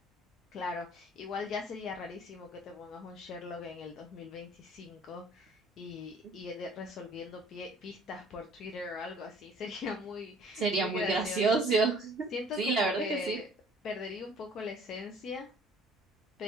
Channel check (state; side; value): normal; both; correlation 0.55